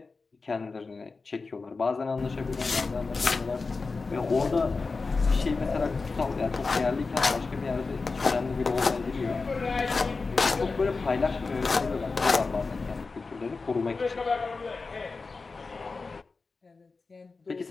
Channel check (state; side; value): quieter; right; 4.2 dB